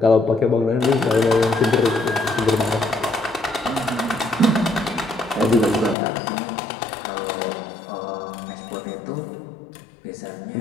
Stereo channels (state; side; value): drops out; right; at 6.0 s